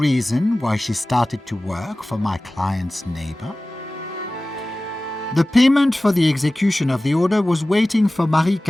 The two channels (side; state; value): both; normal; correlation 0.97